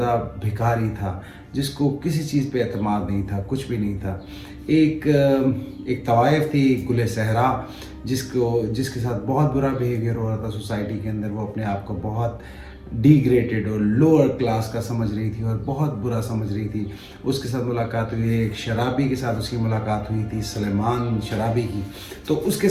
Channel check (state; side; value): identical; both; correlation 1.00